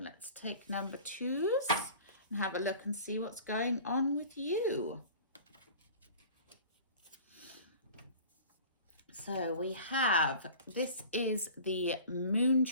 take number twos and have a look and see what's going on with you. So we have, this is the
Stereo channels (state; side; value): inverted; both; correlation -0.42